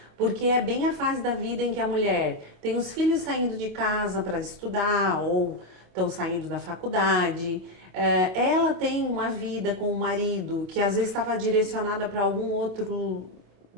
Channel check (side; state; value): left; late; 27 ms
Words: porque é bem a fase da vida em que a mulher tem os filhos saindo de casa para estudar ou estão saindo da faculdade. Ela tem uma vida com o marido que às vezes estava direcionada para algum outro